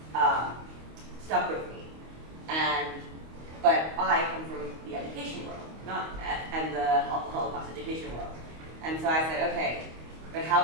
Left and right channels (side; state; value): left; late; 25 ms